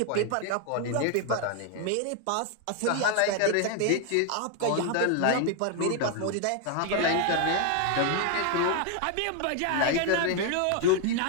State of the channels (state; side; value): different; both; correlation 0.00